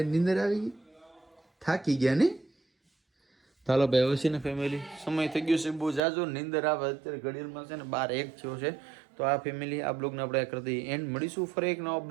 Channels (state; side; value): drops out; left; at 6.0 s